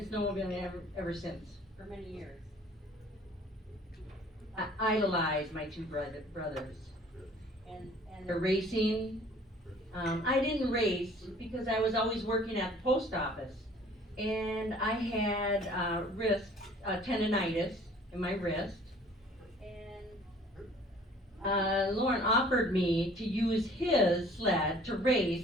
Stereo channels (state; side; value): normal; both; correlation 0.53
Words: snowmobiling ever since for many years. I idolized my two brothers, and the racing. I didn't race because I was always working at the post office, and I had tendonitis in my wrist, and Loren offered me to use his sled to